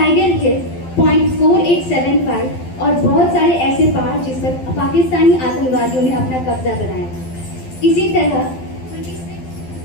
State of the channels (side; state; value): right; late; 12 ms